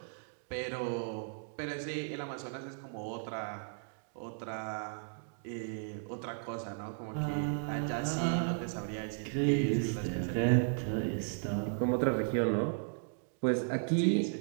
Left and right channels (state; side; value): silent; left; digital silence